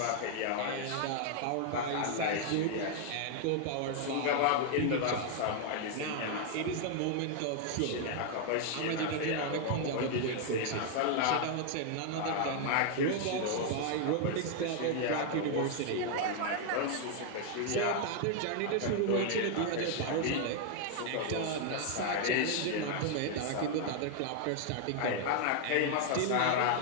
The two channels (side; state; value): both; different; correlation 0.00